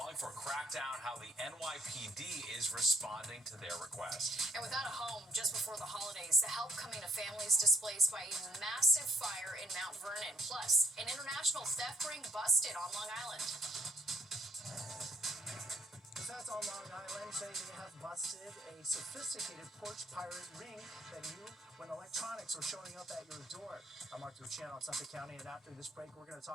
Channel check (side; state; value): both; normal; correlation 0.64